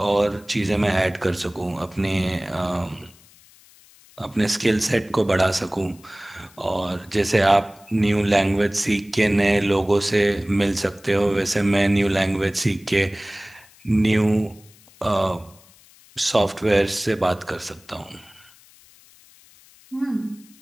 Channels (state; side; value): noise; left; hiss, 26 dB below the sound